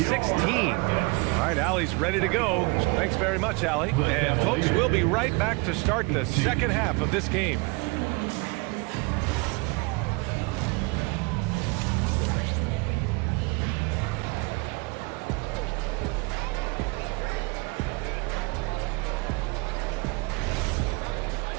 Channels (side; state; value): left; quieter; 28.1 dB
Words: All right, Allie's ready to go. Thanks very much, Allie. And folks, we'll be right back to start the second half of this game.